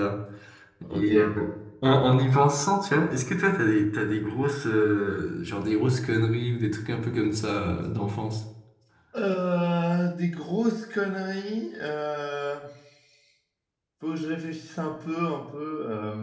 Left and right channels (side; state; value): both; identical; correlation 1.00